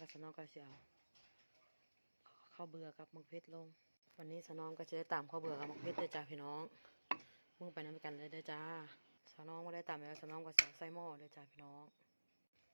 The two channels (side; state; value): both; inverted; correlation -1.00